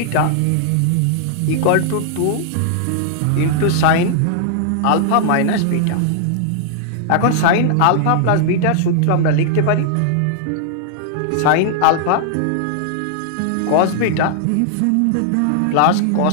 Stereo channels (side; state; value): both; different; correlation -0.01